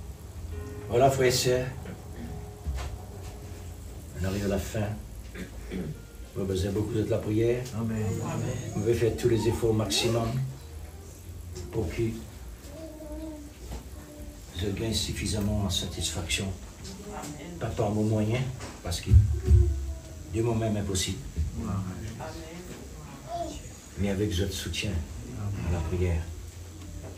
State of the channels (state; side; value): identical; both; correlation 1.00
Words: Voilà, frères et sœurs, on arrive à la fin. Vous avez besoin beaucoup de la prière. Amen. Vous pouvez faire tous les efforts au maximum pour que je gagne suffisamment en satisfaction. Pas par mon moyen, parce que de moi-même impossible, mais avec votre soutien à la prière,